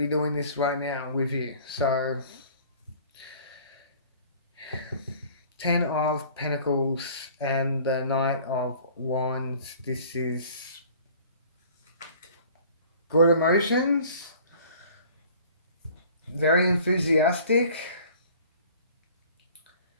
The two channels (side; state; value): both; inverted; correlation -0.50